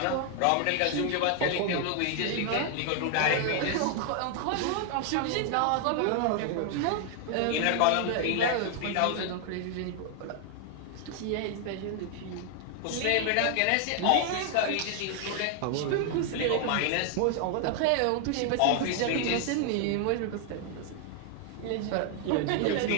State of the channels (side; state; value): both; different; correlation 0.00